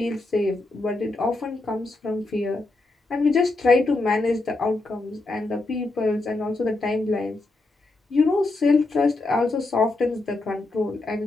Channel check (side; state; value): right; quieter; 3.1 dB